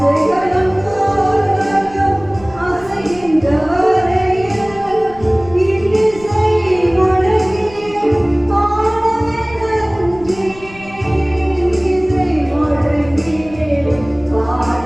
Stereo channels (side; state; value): left; noise; rumble, 19 dB below the sound